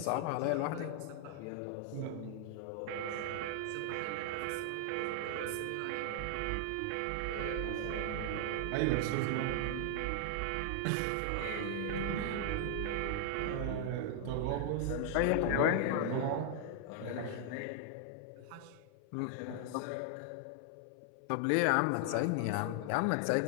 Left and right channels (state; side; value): different; both; correlation 0.00